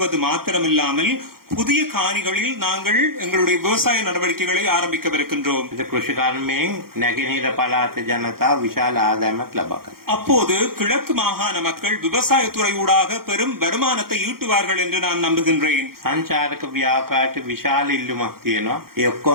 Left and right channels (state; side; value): late; left; 0.93 ms